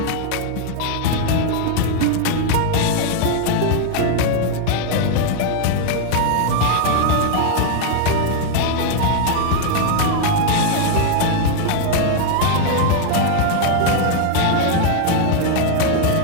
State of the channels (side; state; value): both; different; correlation 0.00